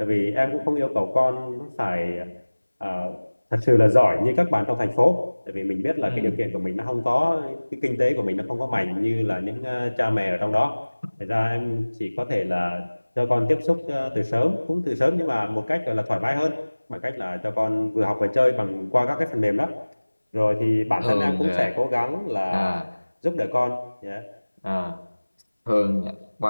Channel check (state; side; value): inverted; both; correlation -1.00